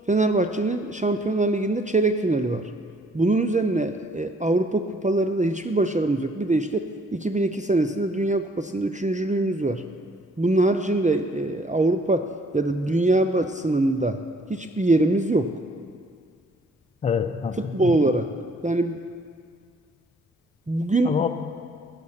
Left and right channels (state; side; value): normal; both; correlation 0.61